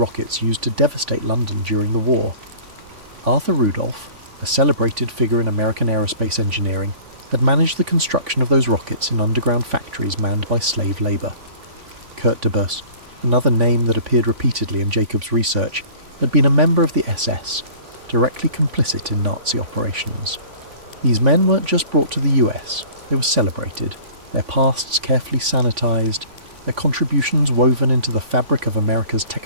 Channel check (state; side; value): late; left; 3.5 ms